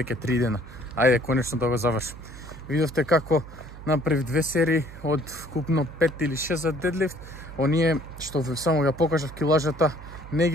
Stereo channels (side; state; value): right; noise; hum, 15 dB below the sound